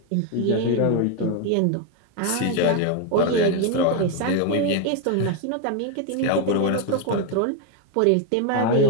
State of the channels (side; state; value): both; different; correlation 0.01